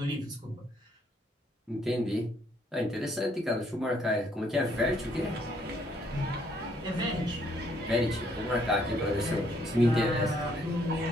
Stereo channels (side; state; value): both; normal; correlation 0.68